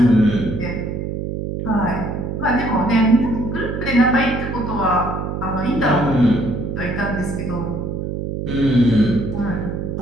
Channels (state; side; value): noise; right; hum, 4 dB below the sound